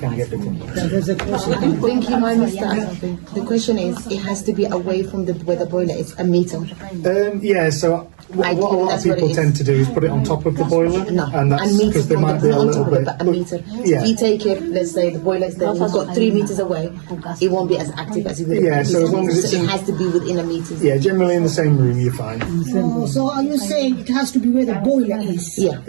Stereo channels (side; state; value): left; silent; digital silence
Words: get it. There's a question. I think you might miss that. The question is, it has to be away from where the boiler is, a meter. Yeah, so what a lot of that's what people it tend is. to do is put it on top of the boiler, No, and that's meter because they from might be a not on little top of it, bit. but a meter. Yeah. If you take it, let's say the boiler is there, you've got 3 meters away, it won't be as active as it would. Yeah, so as long as it's it in- has to be within a meter. Yeah, generally in the same room, you're fine. So are you saying it has to be where the boiler is? Yeah.